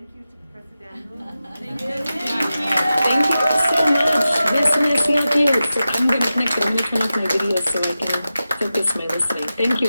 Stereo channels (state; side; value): inverted; both; correlation -0.93